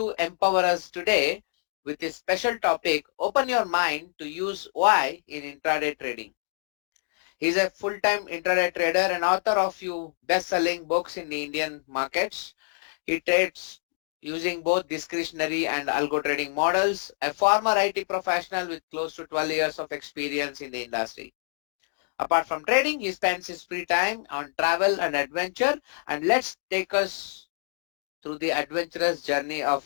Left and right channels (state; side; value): silent; right; digital silence